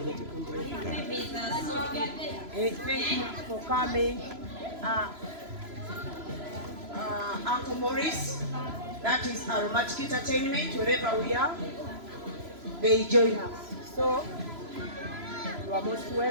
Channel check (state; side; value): late; left; 3.0 ms